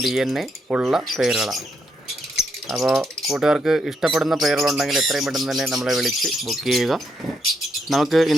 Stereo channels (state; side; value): normal; both; correlation 0.78